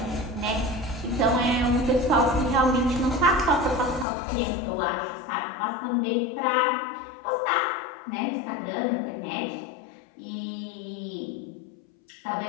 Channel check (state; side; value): drops out; right; at 4.0 s